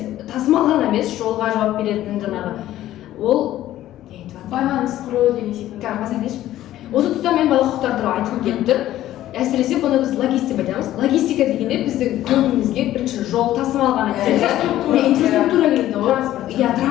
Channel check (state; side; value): quieter; right; 13.7 dB